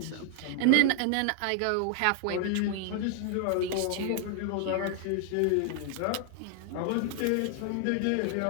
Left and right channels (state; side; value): different; both; correlation 0.00